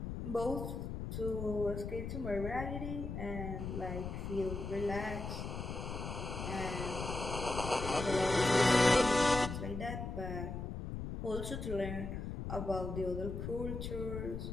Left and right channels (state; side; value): noise; left; rumble, 5 dB below the sound